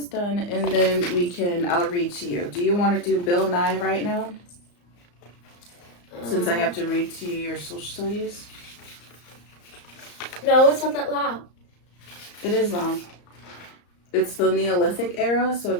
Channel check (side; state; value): right; late; 34 ms